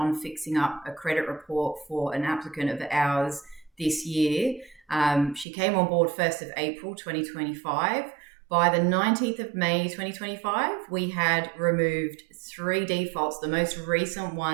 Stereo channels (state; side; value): drops out; left; at 5.5 s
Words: fixing up a credit report for an applicant of ours this year. She came on board 1st of April 2025. By the 19th of May 2025, we had removed 3 defaults, the most recent